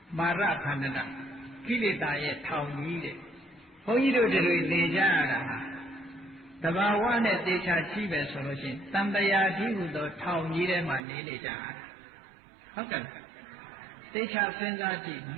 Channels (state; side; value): drops out; left; at 11.0 s